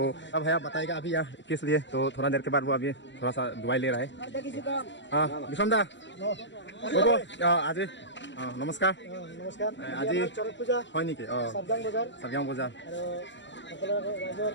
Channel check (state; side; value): late; right; 0.53 ms